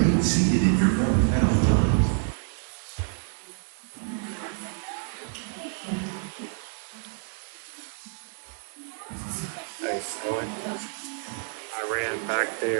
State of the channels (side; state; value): left; silent; digital silence